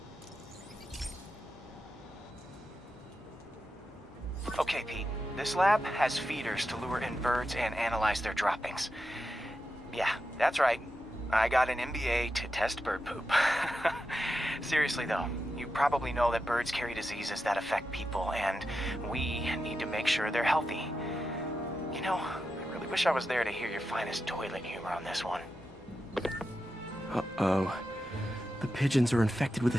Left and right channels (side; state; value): both; normal; correlation 0.89